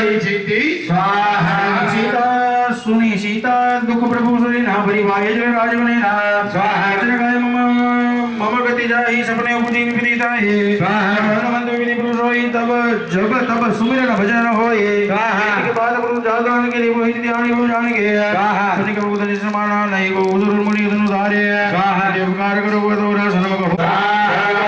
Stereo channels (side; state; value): both; identical; correlation 1.00